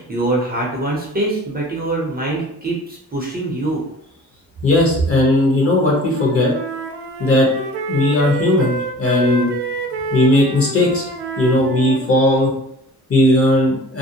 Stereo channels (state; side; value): normal; both; correlation 0.45